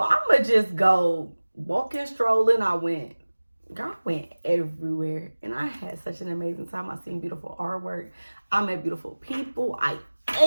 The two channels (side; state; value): both; inverted; correlation -1.00